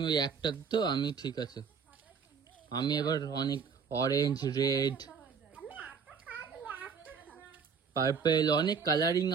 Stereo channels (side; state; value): left; quieter; 6.1 dB